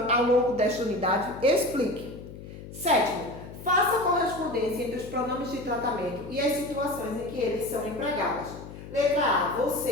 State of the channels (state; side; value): noise; left; hum, 13 dB below the sound